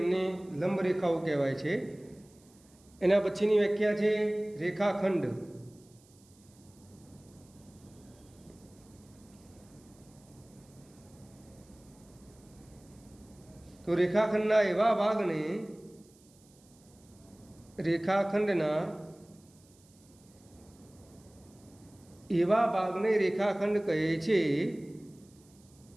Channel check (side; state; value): right; noise; hiss, 29 dB below the sound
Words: લંબ રેખાઓ કહેવાય છે. એના પછીની વ્યાખ્યા છે રેખાખંડ. તો રેખાખંડના એવા ભાગને રેખાખંડ કહે છે